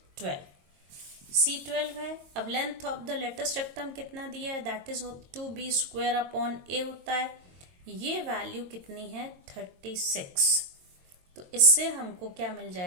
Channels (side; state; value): left; late; 22 ms